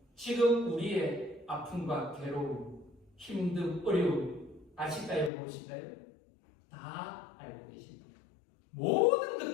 지금 우리의 아픔과 괴로움, 힘듦, 어려움 아실까요? 모르실까요? 다 알고 계십니다. 모든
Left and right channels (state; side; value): drops out; right; at 5.3 s